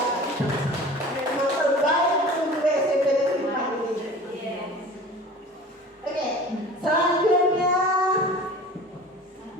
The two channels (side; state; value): both; normal; correlation 0.41